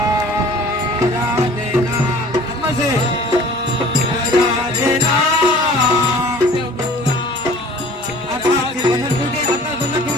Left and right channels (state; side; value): normal; both; correlation 0.48